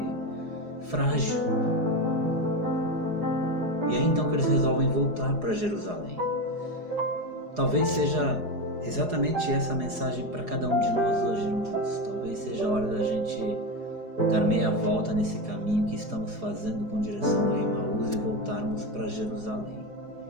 frágil. E aí então que eles resolvem voltar para Jerusalém. Talvez seja exatamente essa mensagem para cada um de nós hoje, irmãos. Talvez seja a hora da gente dar meia volta nesse caminho que estamos fazendo com direção a Emaús e voltarmos para Jerusalém.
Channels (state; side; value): late; left; 4.8 ms